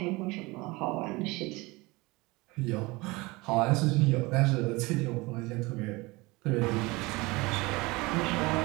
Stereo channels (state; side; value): quieter; left; 23.3 dB